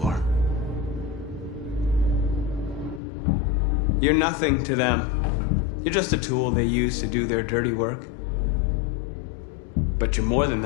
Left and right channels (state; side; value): drops out; right; at 3.0 s